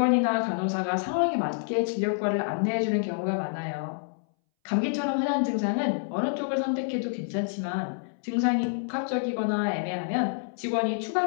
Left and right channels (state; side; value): silent; right; 60 dB below the other